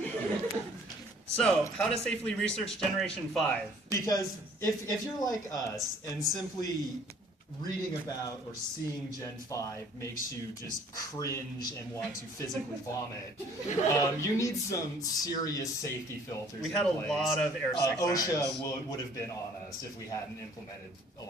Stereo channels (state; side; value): normal; both; correlation 0.56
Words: So, how to safely research Generation 5? Because if you're like us and simply reading about or seeing Gen 5 makes you just cringe and want to physically vomit, you need some serious safety filters. We had a lot of airsick OSHA would have been on us if we hadn't implemented a